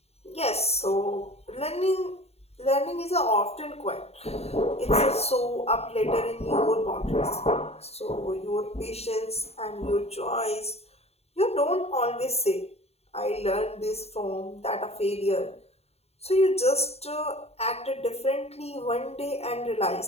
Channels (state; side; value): late; right; 0.30 ms